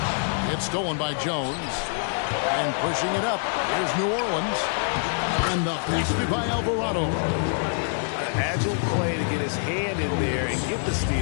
It's stolen by Jones. And pushing it up. Here's New Orleans. And the basket by Alvarado. Agile play to get his hand in there and get the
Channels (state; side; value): silent; right; 61 dB below the other